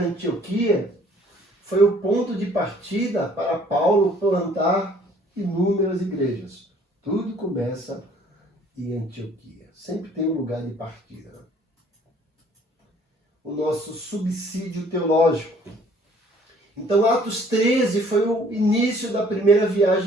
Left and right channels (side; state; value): both; normal; correlation 0.57